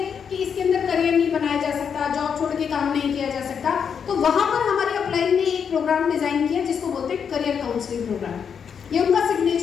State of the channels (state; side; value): quieter; right; 7.1 dB